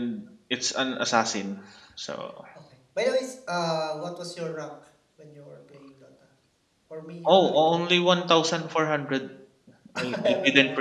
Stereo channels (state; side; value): identical; both; correlation 1.00